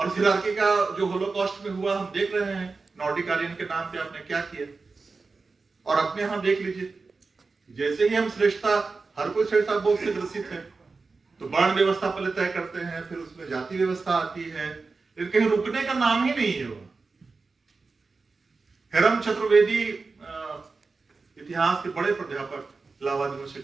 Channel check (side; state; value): left; quieter; 4.2 dB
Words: इस हायरार्की का जो होलोकॉस्ट में हुआ हम देख रहे हैं, नॉर्डिक आर्यन के नाम पे आपने क्या किया। और अपने यहां देख लीजिए, जैसे ही हम श्रेष्ठता, हर कोई श्रेष्ठता बोध से ग्रसित है, तो वर्ण व्यवस्था पहले तय करते हैं, फिर उसमें जाति व्यवस्था आती है, लेकिन कहीं रुकने का नाम ही नहीं है। वो हेरम चतुर्वेदी इतिहास के बड़े प्राध्यापक इलाहाबाद